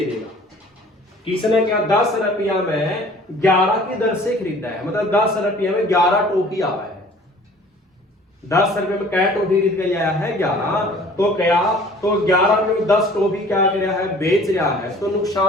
देगा। किसने क्या 10 रुपया में 11 की दर से खरीदा है, मतलब 10 रुपया में 11 टॉफी आवा है। 10 रुपए में क्या टॉफी खरीद के आया है 11, तो क्या तो 11 रुपए में 10 टॉफी क्या कर रहा है बेच रहा है, तो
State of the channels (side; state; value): both; normal; correlation 0.50